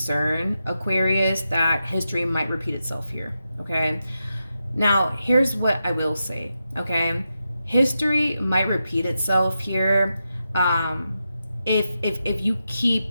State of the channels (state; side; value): inverted; both; correlation -0.88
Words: Aquarius, that history might repeat itself here, okay? Now, here's what I will say, okay? History might repeat itself here if you